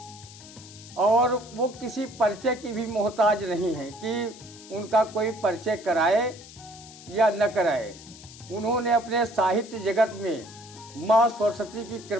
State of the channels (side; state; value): left; noise; hiss, 18 dB below the sound